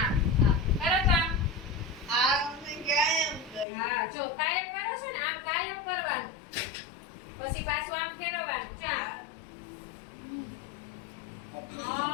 કરો તો આમ. જો કાયમ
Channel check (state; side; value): drops out; right; at 3.7 s